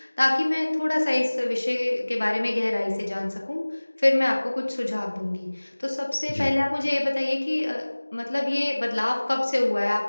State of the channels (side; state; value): both; inverted; correlation -1.00